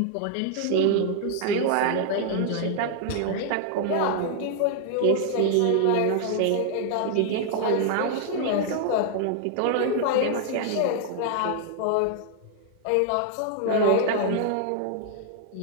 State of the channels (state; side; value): different; both; correlation 0.00